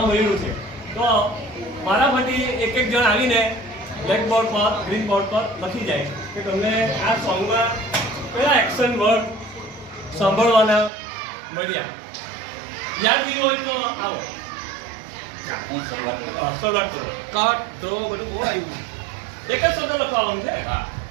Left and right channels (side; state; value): left; drops out; at 10.9 s